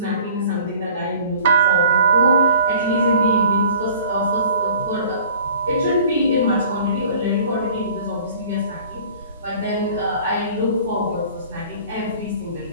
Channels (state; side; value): inverted; both; correlation -0.48